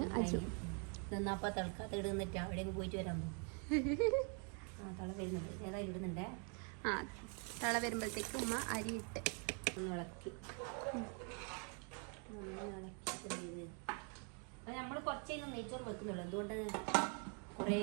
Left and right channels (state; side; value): quieter; left; 39.5 dB